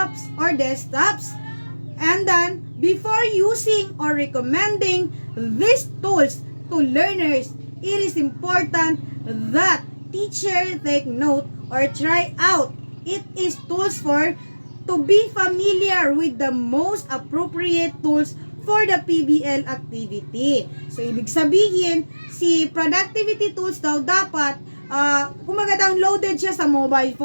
or desktops. And then, before using or recommending these tools to learners, it is important that teacher take note or try out. It is tools for to be familiar with the most appropriate tools for the PBL activity. So, ibig sabihin, si productivity tools daw dapat, kumaga downloaded siya sa mobile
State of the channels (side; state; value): both; inverted; correlation -1.00